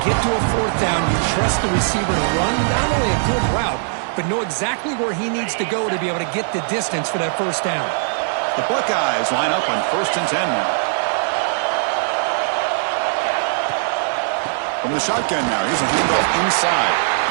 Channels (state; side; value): silent; left; 66 dB below the other